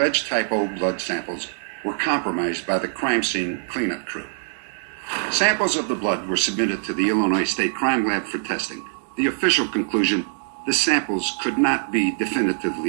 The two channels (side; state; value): left; silent; digital silence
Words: type O blood samples were compromised by the crime scene cleanup crew. Samples of the blood were submitted to the Illinois State Crime Lab for testing. The official conclusion, the samples could not be